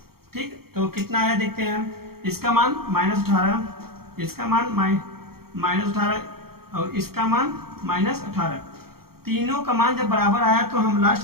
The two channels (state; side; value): late; left; 0.94 ms